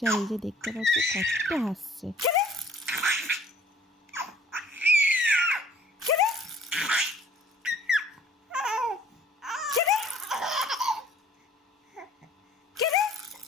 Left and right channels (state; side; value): normal; both; correlation 0.55